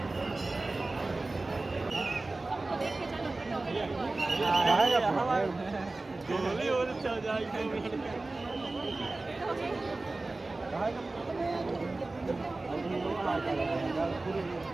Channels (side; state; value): left; quieter; 3.2 dB